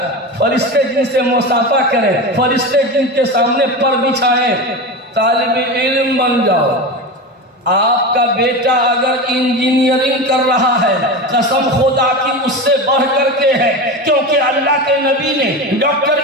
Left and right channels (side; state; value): both; normal; correlation 0.24